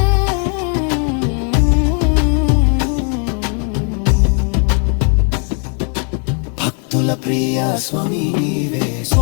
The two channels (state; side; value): quieter; right; 39.5 dB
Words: భక్తుల ప్రియ స్వామి నీవే.